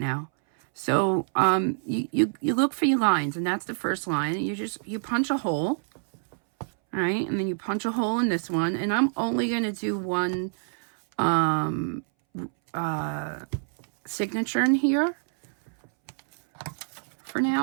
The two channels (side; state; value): left; silent; 60 dB below the other